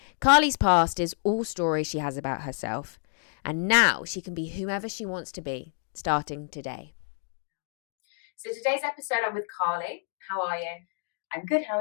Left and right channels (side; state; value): right; silent; digital silence